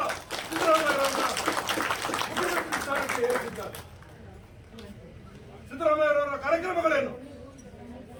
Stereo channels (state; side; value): identical; both; correlation 1.00